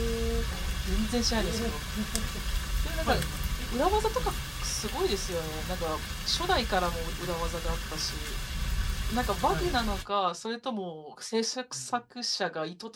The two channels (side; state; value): both; identical; correlation 1.00